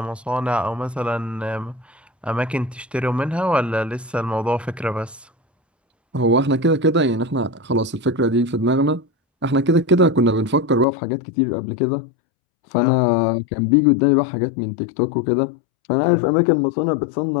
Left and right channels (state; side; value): drops out; right; at 10.9 s